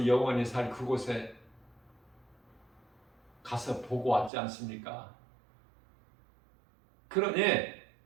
영원히 살 그곳에 가서 보고 왔지 않습니까? 그러니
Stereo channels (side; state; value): left; drops out; at 4.3 s